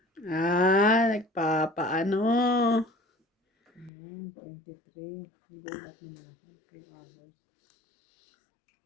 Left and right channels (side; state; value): right; drops out; at 3.9 s